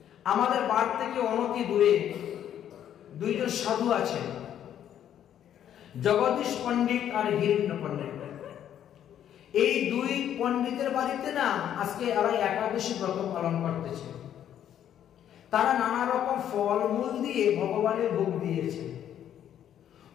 আমাদের বাড়ি থেকে অনতি দূরে দুইজন সাধু আছেন, জগদীশ পণ্ডিত আর হিরণ্য পণ্ডিত। এই দুই পণ্ডিতের বাড়িতে না আজকে এরা একাদশী ব্রত পালন করতেছে। তারা নানা রকম ফলমূল দিয়ে ভগবানের ভোগ দিয়েছে।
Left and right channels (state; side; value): quieter; right; 10.3 dB